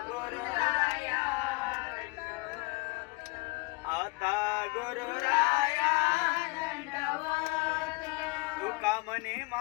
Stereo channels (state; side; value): quieter; right; 27.1 dB